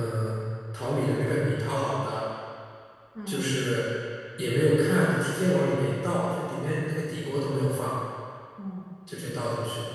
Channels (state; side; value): identical; both; correlation 1.00